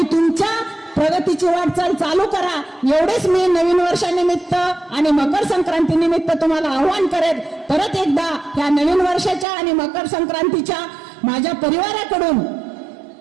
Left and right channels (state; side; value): drops out; left; at 9.5 s